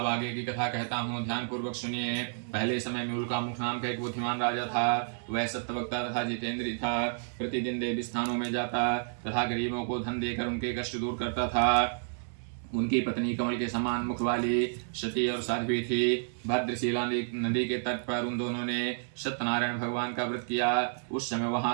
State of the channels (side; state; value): left; silent; 57 dB below the other